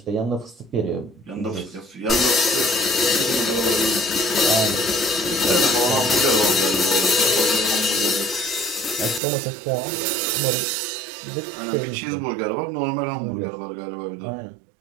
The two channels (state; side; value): drops out; left; at 9.2 s